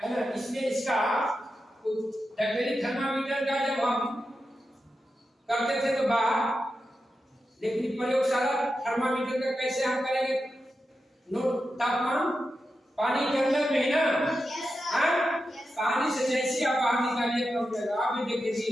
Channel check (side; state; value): both; normal; correlation 0.90